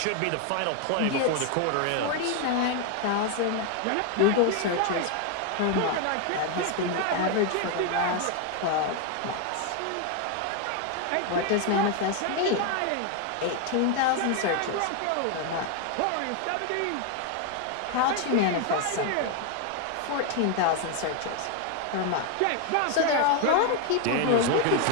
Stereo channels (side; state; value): both; different; correlation 0.01